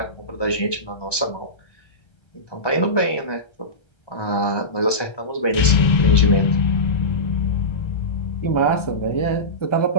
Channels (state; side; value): late; right; 1.2 ms